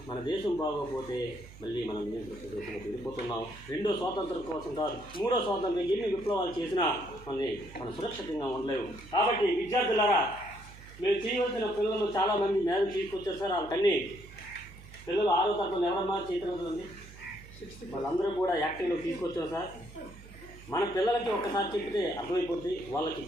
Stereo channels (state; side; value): noise; right; hum, 18 dB below the sound